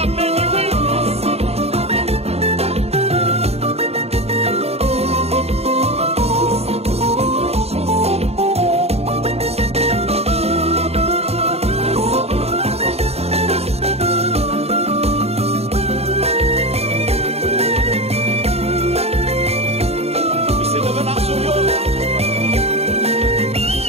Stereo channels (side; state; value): left; late; 0.30 ms